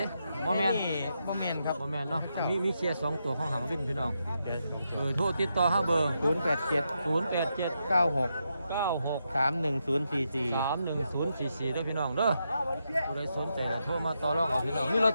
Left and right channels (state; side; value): inverted; both; correlation -0.84